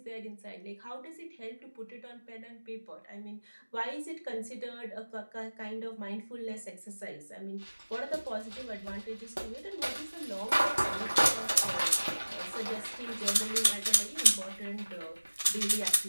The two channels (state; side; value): inverted; both; correlation -1.00